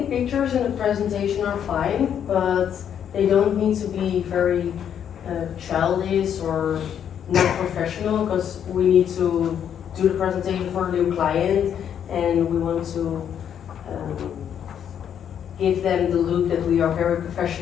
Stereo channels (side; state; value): right; quieter; 8.9 dB